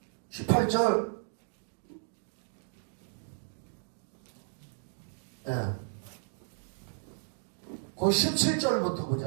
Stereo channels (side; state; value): left; silent; 55 dB below the other